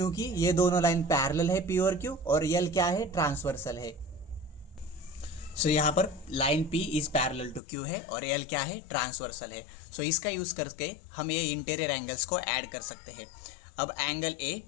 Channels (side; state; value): right; drops out; at 7.6 s